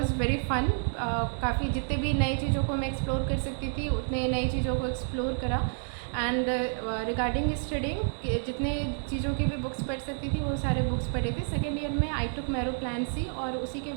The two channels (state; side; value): silent; left; 58 dB below the other